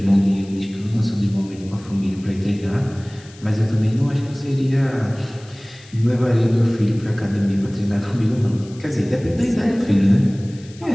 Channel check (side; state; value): left; noise; hiss, 24 dB below the sound